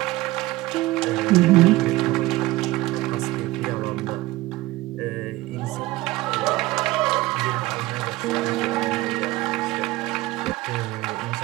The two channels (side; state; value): left; quieter; 18.5 dB